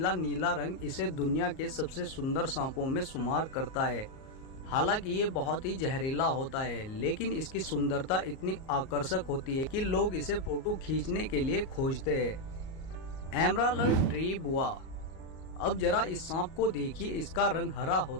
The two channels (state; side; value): late; right; 38 ms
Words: नीला रंग इसे दुनिया के सबसे सुंदर सांपों में शुमार करता है। हालांकि ये बहुत ही जहरीला होता है, लेकिन इसकी सुंदरता इतनी आकर्षक होती है कि लोग इसे फोटो खींचने के लिए खोजते हैं। एमराल्ड ट्री बुआ। अब जरा इस सांप को देखिए। इसका रंग हरा